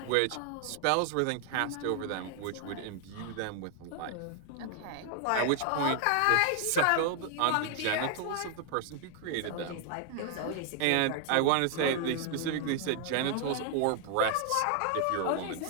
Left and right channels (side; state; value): both; different; correlation 0.00